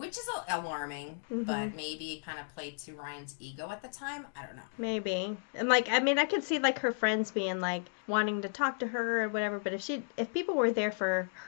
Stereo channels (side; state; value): right; silent; digital silence